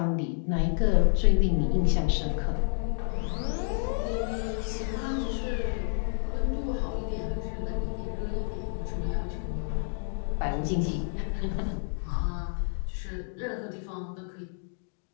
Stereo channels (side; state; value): right; silent; digital silence